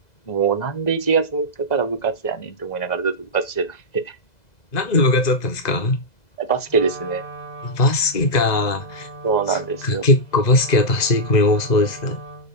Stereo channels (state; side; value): late; right; 2.0 ms